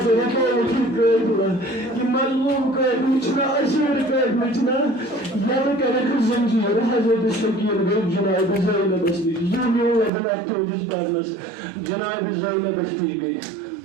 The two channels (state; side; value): drops out; left; at 10.1 s